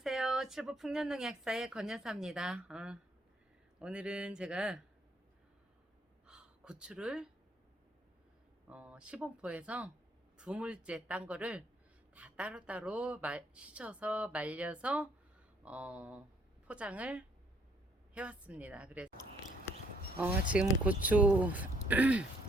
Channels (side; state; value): both; normal; correlation 0.67